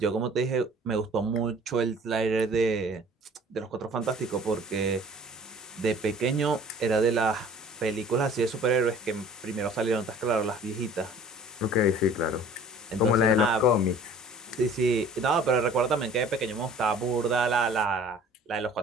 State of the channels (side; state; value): both; normal; correlation 0.49